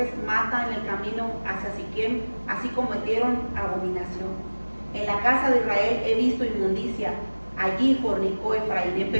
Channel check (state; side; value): inverted; both; correlation -1.00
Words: mata en el camino hacia Siquem, así cometieron abominación. En la casa de Israel he visto inmundicia, allí fornicó Efraín.